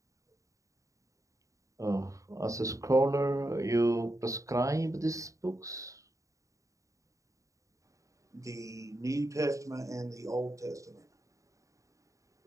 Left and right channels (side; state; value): left; late; 0.16 ms